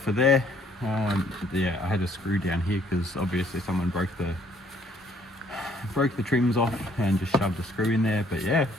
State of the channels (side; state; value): both; normal; correlation 0.64